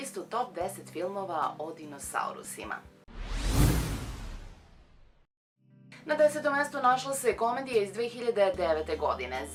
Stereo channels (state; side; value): identical; both; correlation 1.00